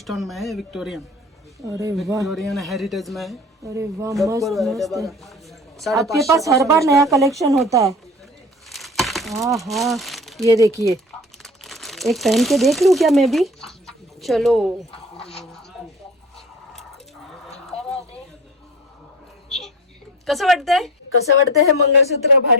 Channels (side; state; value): both; normal; correlation 0.37